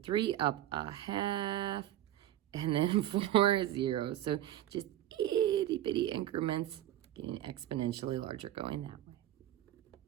3, up a half, and then 4 is 0. So just itty bitty increments, getting exponentially larger going that way.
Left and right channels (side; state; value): left; quieter; 12.6 dB